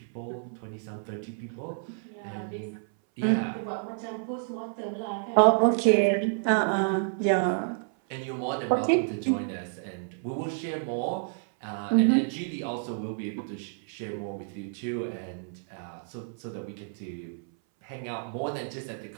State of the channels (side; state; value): left; silent; 58 dB below the other